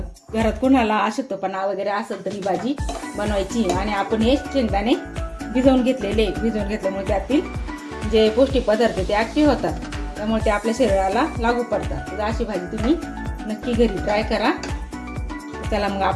घरात कोणाला अशक्तपणा वगैरे असेल तर ही भाजी बनवायची। आणि आपण हे शेंगदाणे भिजवून घेतल्यामुळे त्यातील जे पौष्टिक पदार्थ ते ऍक्टिव्ह होतात, त्यामुळे ते आपल्या शरीराला लागू पडतात। तर अशी भाजी तुम्ही नक्की घरी ट्राय करा। चला मग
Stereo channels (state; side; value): identical; both; correlation 1.00